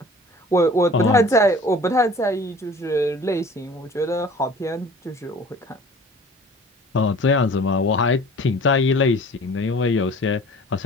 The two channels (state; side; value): normal; both; correlation 0.46